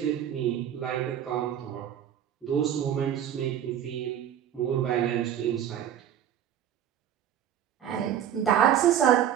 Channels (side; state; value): left; quieter; 9.9 dB